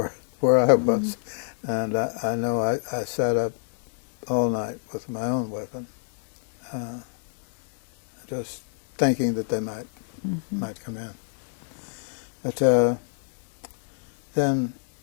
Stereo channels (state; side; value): silent; right; digital silence